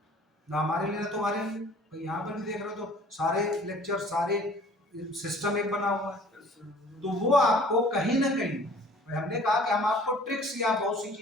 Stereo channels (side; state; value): both; normal; correlation 0.51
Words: ना हमारे लिए ना तुम्हारे लिए भाई। यहाँ पर भी देख रहे हो तो सारे लेक्चर, सारे सिस्टम एक बना हुआ है, तो वो आपको कहीं ना कहीं हमने कहा कि हम आपको ट्रिक्स या बहुत सी